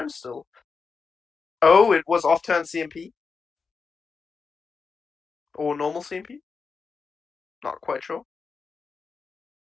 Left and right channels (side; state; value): right; quieter; 5.0 dB